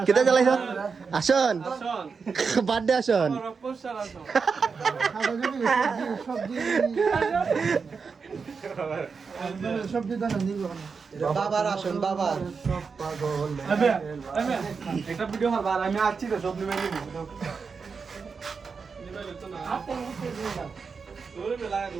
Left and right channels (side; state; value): left; quieter; 5.3 dB